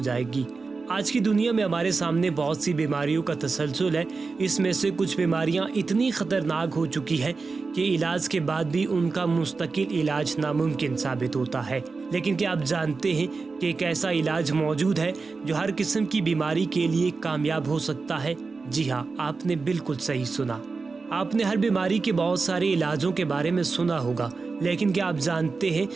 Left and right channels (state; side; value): quieter; left; 4.3 dB